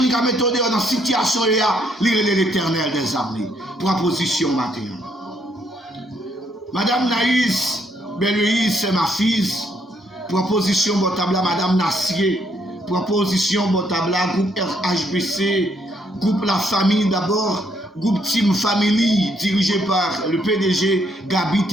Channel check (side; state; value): both; normal; correlation 0.72